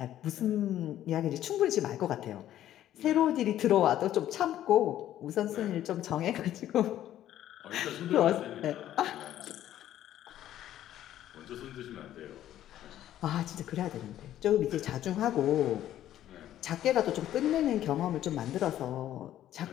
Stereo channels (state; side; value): quieter; right; 12.3 dB